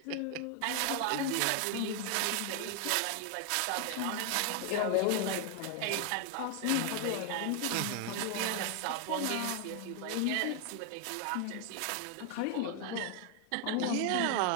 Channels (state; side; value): different; both; correlation 0.00